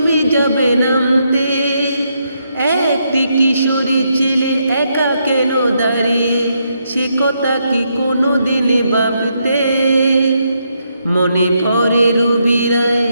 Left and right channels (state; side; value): inverted; both; correlation -0.78